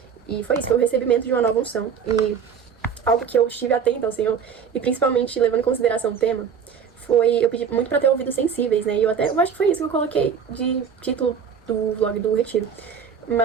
E foi isso, foi o recebimento de uma nova unção. E algo que eu estive atenta ao Senhor, e principalmente levando em consideração o tema, foi, eu pedi muito pra ter ouvidos sensíveis, né? E eu acho que foi isso que eu coloquei de título do vlog do retiro.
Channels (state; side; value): quieter; left; 7.0 dB